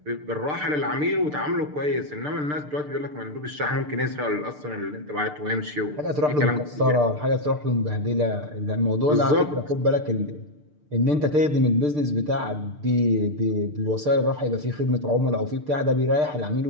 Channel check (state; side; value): late; left; 6.7 ms